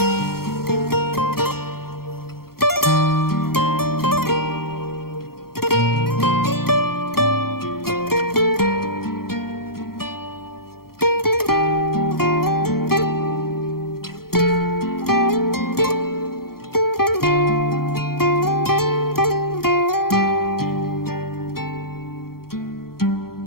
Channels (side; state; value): right; late; 0.94 ms